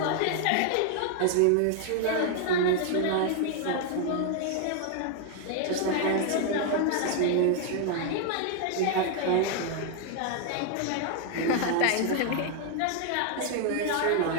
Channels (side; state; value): both; different; correlation 0.00